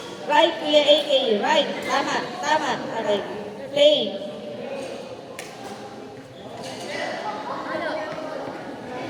Right, Kuya AK. Right. Tama. Tama. Okay. Play. Ano?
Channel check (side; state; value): both; identical; correlation 1.00